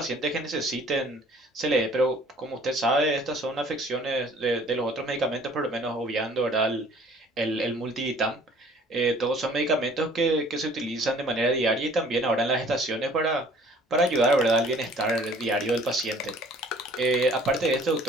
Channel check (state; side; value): normal; both; correlation 0.54